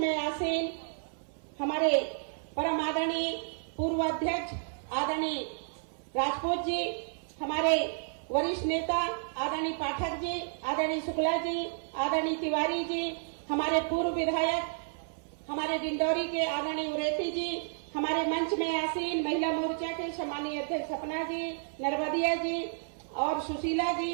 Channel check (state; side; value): silent; left; 57 dB below the other